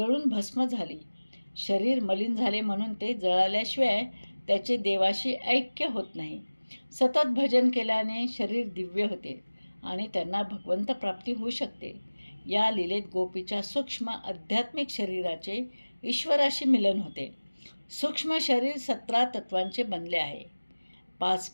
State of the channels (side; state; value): both; inverted; correlation -1.00